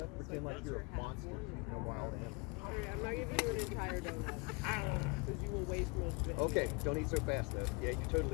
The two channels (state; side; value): quieter; right; 29.9 dB